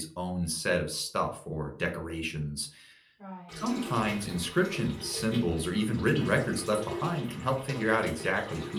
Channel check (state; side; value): identical; both; correlation 1.00